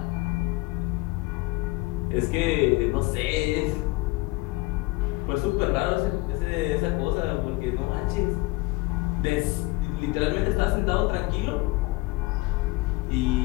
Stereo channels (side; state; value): right; quieter; 21.7 dB